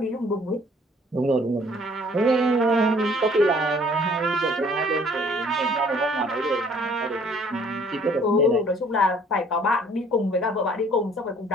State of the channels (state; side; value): normal; both; correlation 0.58